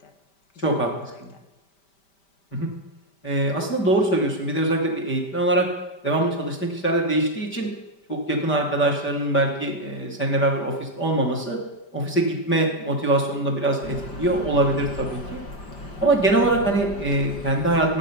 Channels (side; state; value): right; late; 5.1 ms